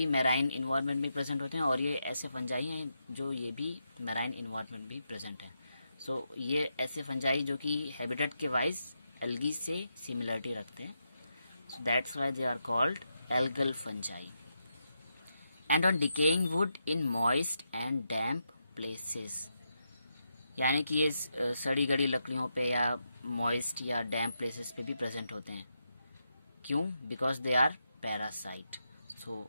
मैराइन इन्वायरमेंट में प्रेजेंट होते हैं और ये ऐसे फंजाई हैं जो ये भी मैराइन इन्वायरमेंट भी प्रेजेंट है। सो ये ऐसे फंजाई जो कि हैबिटेट के वाइज एल्गी से सिमिलरिटी रखते हैं, so that's why they are called algal fungi. And on decaying wood in moist and damp places, यानी कि ये सड़ी गड़ी लकड़ियों पे या मॉइस्ट या डैम्प प्लेसेस पे भी प्रेजेंट होते हैं। क्यों? Because they are parasite.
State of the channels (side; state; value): both; inverted; correlation -0.84